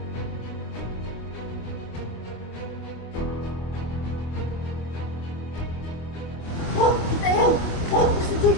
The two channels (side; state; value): right; late; 25 ms